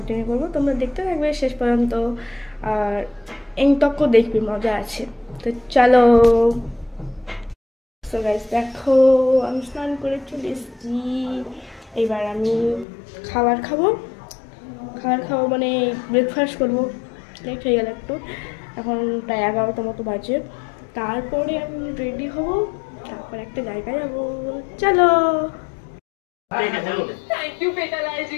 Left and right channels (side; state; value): right; drops out; at 12.9 s